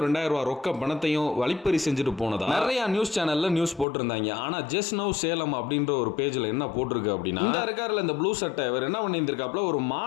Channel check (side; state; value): right; drops out; at 3.9 s